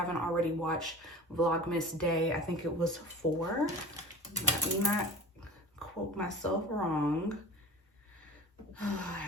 already watched Vlogmas Day, I think it was 4. Let me not quote myself wrong. I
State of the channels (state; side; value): normal; both; correlation 0.37